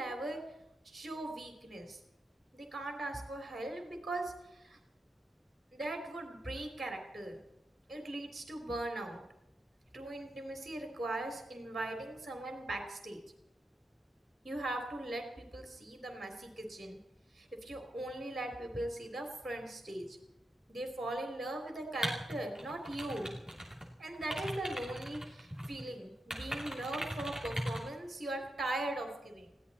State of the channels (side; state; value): both; normal; correlation 0.86